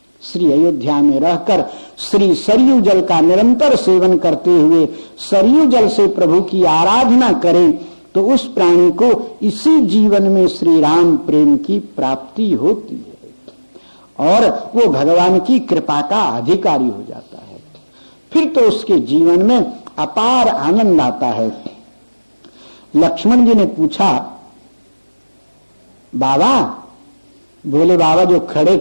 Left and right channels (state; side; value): inverted; both; correlation -1.00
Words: श्री अयोध्या में रहकर श्री सरयू जल का निरंतर सेवन करते हुए सरयू जल से प्रभु की आराधना करें तो उस प्राणी को इसी जीवन में श्री राम प्रेम की प्राप्ति होती है और वो भगवान की कृपा का अधिकारी हो जाता है। फिर तो उसके जीवन में अपार आनंद आता है। लक्ष्मण जी ने पूछा, बाबा? बोले, बाबा जो खड़े